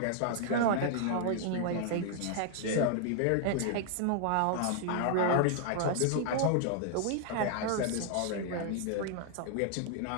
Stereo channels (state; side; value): different; both; correlation 0.00